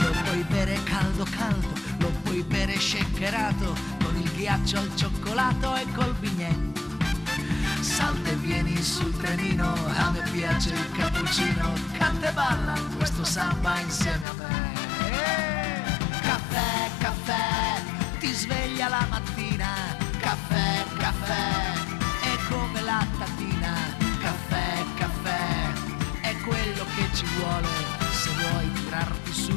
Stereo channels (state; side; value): drops out; right; at 14.2 s